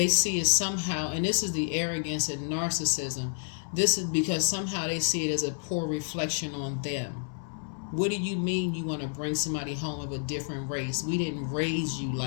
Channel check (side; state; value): right; silent; 58 dB below the other